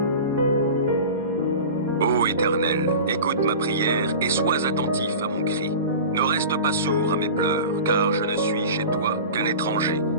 Ô Éternel, écoute ma prière et sois attentif à mon cri. Ne reste pas sourd à mes pleurs, car je ne suis chez toi qu'un étranger,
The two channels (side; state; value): both; inverted; correlation -0.34